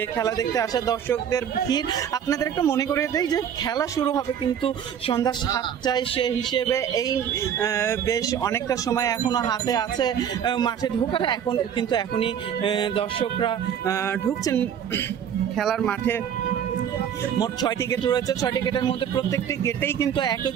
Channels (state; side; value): quieter; left; 8.8 dB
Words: খেলা দেখতে আসা দর্শকদের ভিড়। আপনাদের একটু মনে করিয়ে দেই যে খেলা শুরু হবে কিন্তু সন্ধ্যা 7টায়। সে হিসেবে এই বেশ অনেকটা সময় এখনো হাতে আছে মাঠে ঢোকার। এখনই দর্শকরা ঢুকছেন খেলার মাঠে। মোট 6টি গেট রয়েছে। 6টি গেটের মধ্যে প্রত্যেকটি গেটেই কিন্তু একই